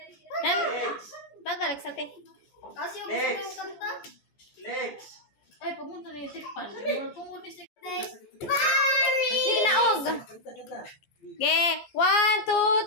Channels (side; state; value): right; late; 14 ms